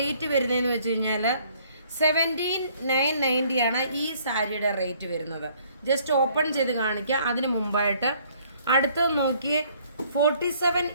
വരുന്നതെന്ന് വെച്ച് കഴിഞ്ഞാൽ 17,990 ആണ് ഈ സാരിയുടെ റേറ്റ് വരുന്നത്. ജസ്റ്റ് ഓപ്പൺ ചെയ്ത് കാണിക്കുക. അതിന് മുമ്പായിട്ട് അടുത്തത് നോക്കിയേ,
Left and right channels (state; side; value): inverted; both; correlation -0.61